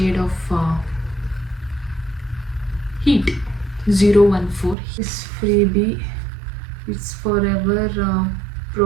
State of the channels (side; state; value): left; drops out; at 4.8 s